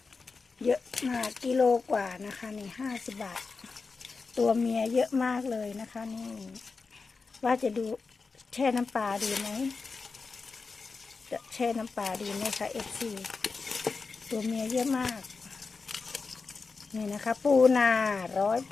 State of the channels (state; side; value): quieter; right; 4.5 dB